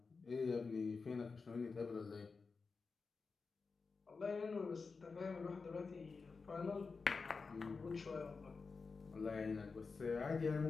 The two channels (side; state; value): right; quieter; 4.6 dB